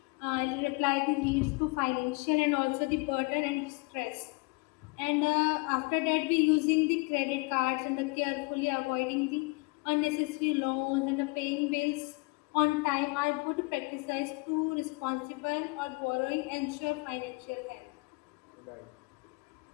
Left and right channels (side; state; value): right; quieter; 29.1 dB